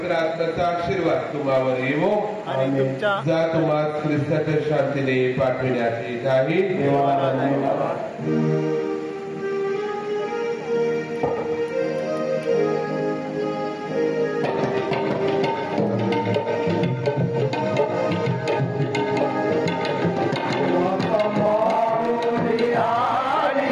आत्म्याचा आशीर्वाद तुम्हावर येवो. आणि तुमच्या जा तुम्हा ख्रिस्ताच्या शांतीने पाठविण्यात येत आहे. देवाला धन्यवाद.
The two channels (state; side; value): identical; both; correlation 1.00